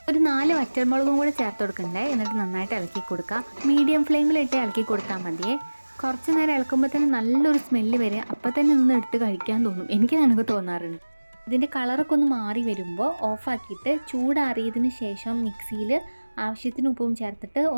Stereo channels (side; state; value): both; inverted; correlation -1.00